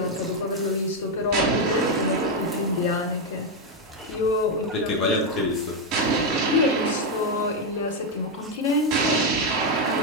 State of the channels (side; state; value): both; normal; correlation 0.04